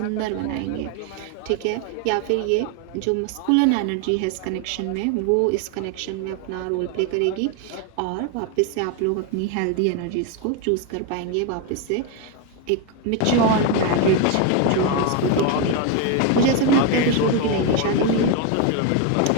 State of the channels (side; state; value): both; different; correlation 0.02